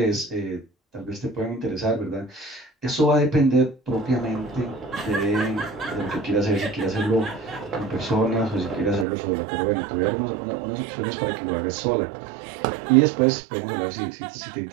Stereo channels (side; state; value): left; drops out; at 9.1 s